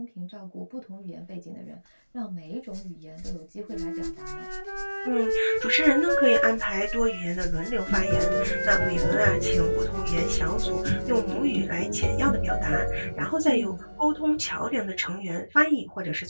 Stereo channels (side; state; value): both; inverted; correlation -1.00